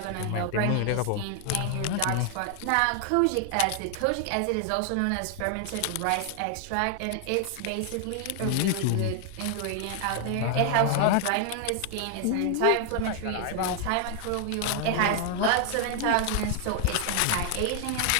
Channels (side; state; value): both; different; correlation 0.00